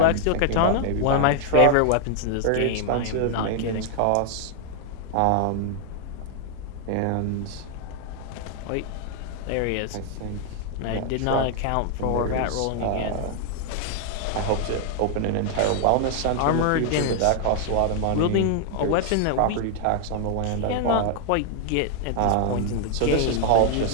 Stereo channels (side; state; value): both; different; correlation 0.00